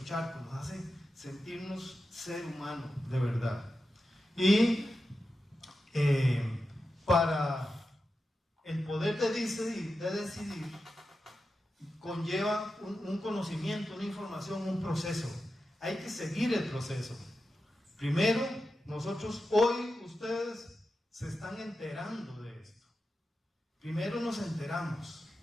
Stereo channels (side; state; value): both; normal; correlation 0.91